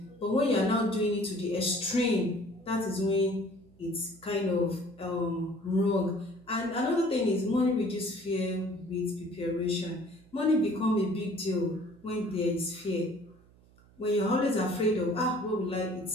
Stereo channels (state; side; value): noise; right; hum, 27 dB below the sound